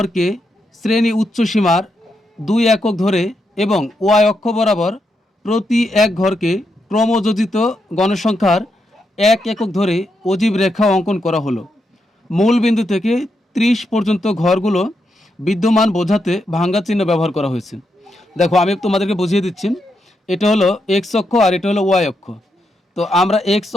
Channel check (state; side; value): normal; both; correlation 0.82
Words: শ্রেণী উচ্চসীমার 2 একক ধরে এবং ওয়াই অক্ষ বরাবর প্রতি এক ঘরকে ক্রমযোজিত গণসংখ্যার 1 একক ধরে অজীব রেখা অঙ্কন করা হলো। মূল বিন্দু থেকে 30 পর্যন্ত ঘরগুলো বিদ্যমান বোঝাতে ভাঙ্গা চিহ্ন ব্যবহার করা হয়েছে। দেখো আমি তোমাদেরকে বুঝিয়ে দিচ্ছি, এটা হলো এক্স অক্ষ আর এটা হলো ওয়াই অক্ষ। তো আমরা এক্স